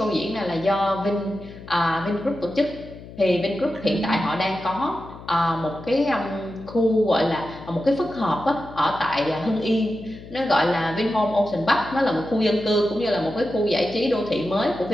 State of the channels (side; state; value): left; noise; hum, 16 dB below the sound